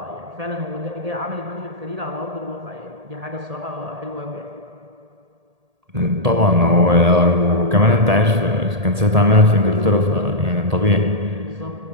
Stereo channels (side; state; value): left; late; 1.8 ms